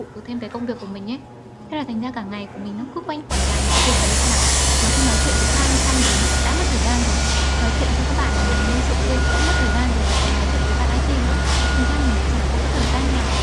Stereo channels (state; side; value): identical; both; correlation 1.00